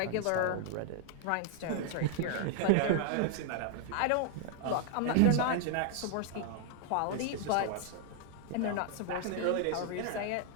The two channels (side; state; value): both; different; correlation 0.00